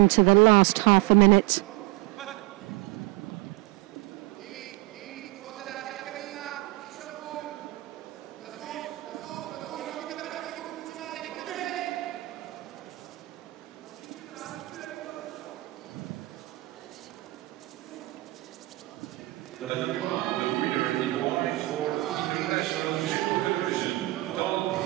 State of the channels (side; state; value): left; quieter; 20.9 dB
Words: the last half a minute.